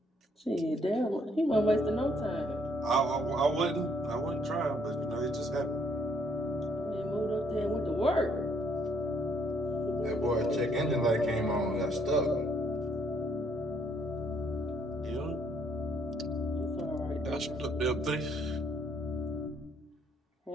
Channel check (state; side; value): normal; both; correlation 0.67